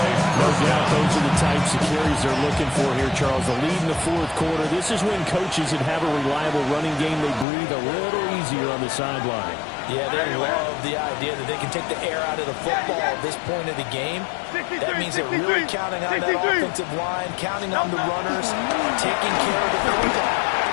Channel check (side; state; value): right; drops out; at 7.5 s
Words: No doubt those are the types of carries they're looking for here, Charles. The lead in the 4th quarter. This is when coaches that have a reliable running game, they breathe a little easier on the sideline. Yeah, they love the idea that they can take the air out of the football at this point of the game. That means they're really counting on that offensive line, counting on the runners, taking care of the football.